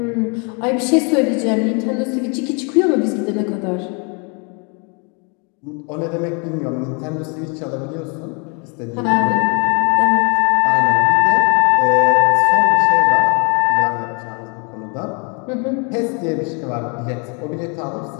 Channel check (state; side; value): quieter; right; 34.6 dB